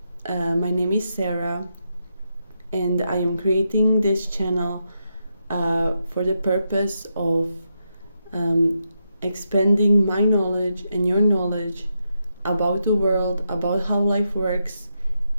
My name is Sarah, and I am creating this channel for the purpose of expanding my knowledge and your knowledge about the world, about how life works,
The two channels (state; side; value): inverted; both; correlation -0.84